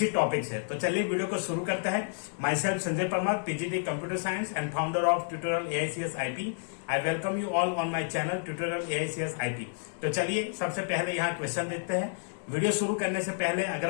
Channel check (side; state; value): right; silent; digital silence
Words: टॉपिक से। तो चलिए वीडियो को शुरू करते हैं। My self Sanjay Parmar, PGT computer science and founder of tutorial AICS IP। I welcome you all on my channel tutorial AICS IP। तो चलिए सबसे पहले यहाँ क्वेश्चन देखते हैं। वीडियो शुरू करने से पहले